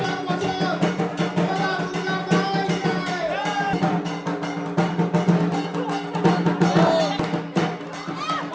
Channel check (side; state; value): both; identical; correlation 1.00